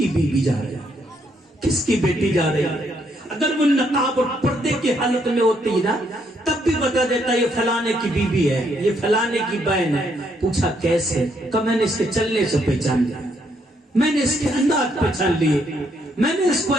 بیوی جا رہی ہے, کس کی بیٹی جا رہی ہے. اگر وہ نقاب اور پردے کی حالت میں ہوتی نا تب بھی بتا دیتا یہ فلانے کی بیوی ہے, یہ فلانے کی بہن ہے. پوچھا کیسے؟ کہ میں نے اس کے چلنے سے پہچان لیا, میں نے اس کے انداز پہچان لیے, میں نے اس کو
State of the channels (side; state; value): both; normal; correlation 0.73